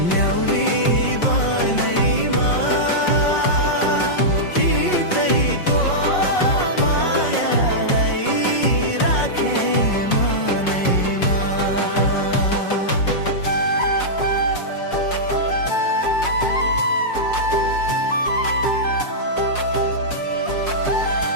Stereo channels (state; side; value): late; right; 5.5 ms